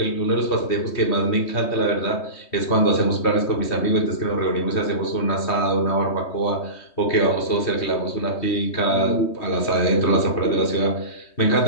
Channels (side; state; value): right; late; 3.2 ms